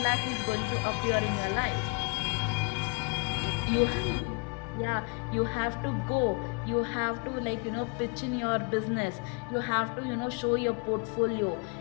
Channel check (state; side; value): quieter; right; 32.7 dB